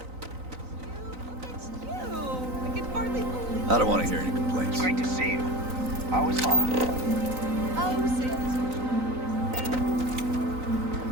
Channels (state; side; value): late; left; 3.9 ms